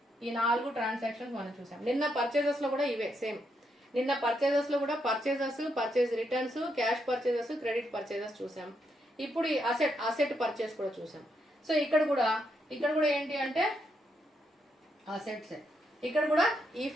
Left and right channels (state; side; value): normal; both; correlation 0.79